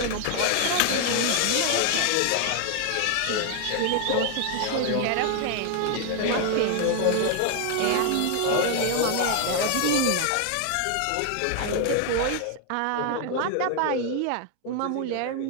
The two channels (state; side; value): different; both; correlation 0.00